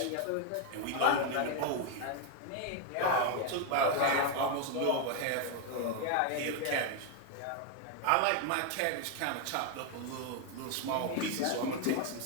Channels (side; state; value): both; different; correlation 0.01